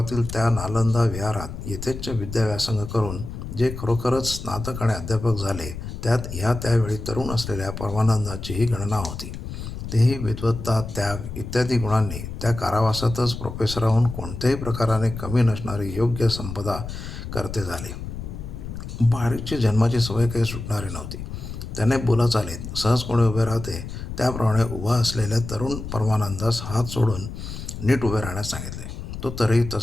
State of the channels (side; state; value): left; noise; rumble, 8 dB below the sound